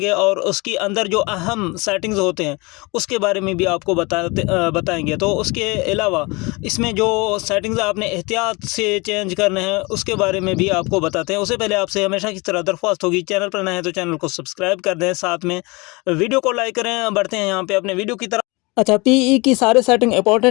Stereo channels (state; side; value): quieter; right; 26.1 dB